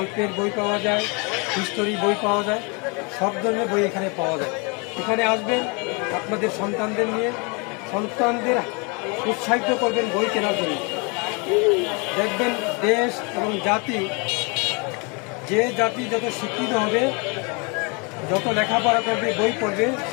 বই পাওয়া যায়, হিস্টোরি বই পাওয়া যায়, সব ধরনের বই এখানে পাওয়া যায়। এখানে আসবেন আপনাদের সন্তানদের নিয়ে, সন্তানদের উৎসাহিত করবেন বই কেনার জন্য। দেখবেন দেশ এবং জাতি, যে জাতি যত শিক্ষিত হবে, যত লেখাপড়া করবে, বই পড়বে,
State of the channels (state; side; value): quieter; right; 31.6 dB